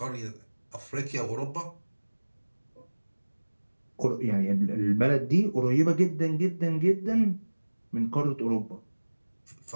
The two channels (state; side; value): inverted; both; correlation -1.00